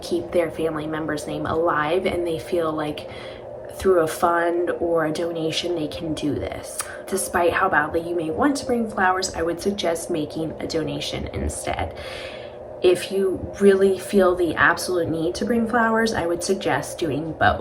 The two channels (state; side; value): identical; both; correlation 1.00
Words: their family member's name alive, and they feel like through a fund or a donation they can do this. Despite how badly you may want to bring flowers, I would suggest making a donation instead. If you really feel the absolute need to bring flowers, I would suggest doing